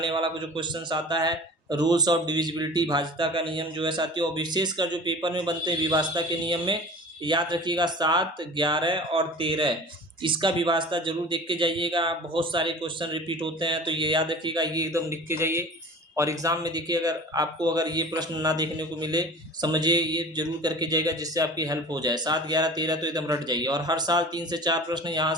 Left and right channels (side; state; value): both; normal; correlation 0.40